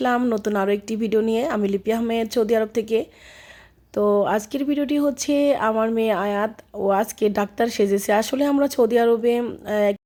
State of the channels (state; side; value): identical; both; correlation 1.00